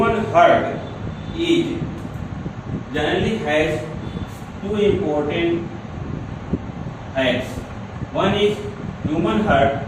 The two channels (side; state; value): both; identical; correlation 1.00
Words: heart is generally has two important facts. One is human heart